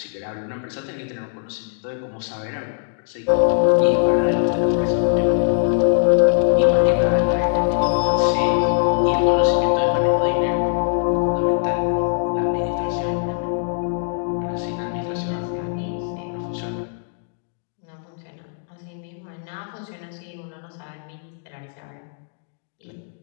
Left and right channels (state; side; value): silent; right; digital silence